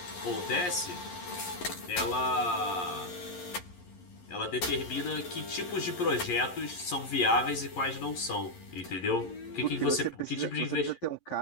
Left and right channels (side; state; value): right; late; 11 ms